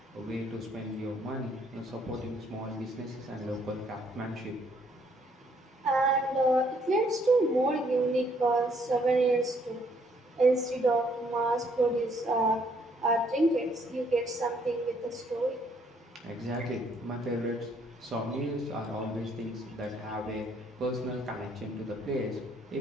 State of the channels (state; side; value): normal; both; correlation 0.67